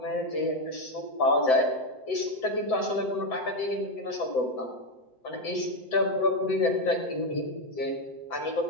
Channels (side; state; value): right; late; 7.8 ms